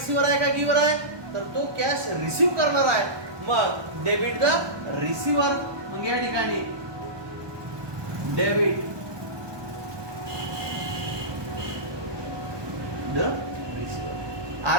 आहे का गिव्हर आहे? तर तो कॅश रिसिव्ह करणार आहे. मग डेबिट द रिसिव्हर. मग या ठिकाणी डेबिट द रिसिव्हर.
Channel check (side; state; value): left; late; 1.2 ms